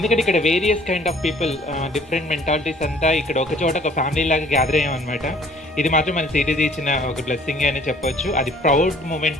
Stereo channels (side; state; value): both; normal; correlation 0.56